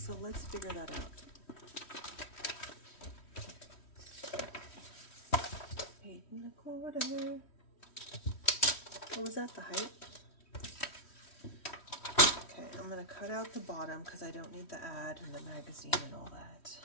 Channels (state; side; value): late; right; 3.1 ms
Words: let's figure that out. 8 1/4. What was that, the height? Okay, I'm gonna cut out the bottom because I don't need the ad and the magazine and all that.